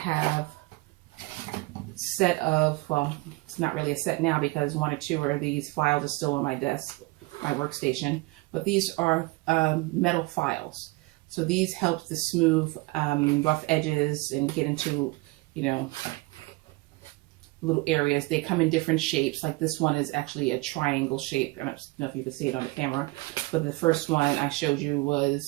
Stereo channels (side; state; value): left; quieter; 23.7 dB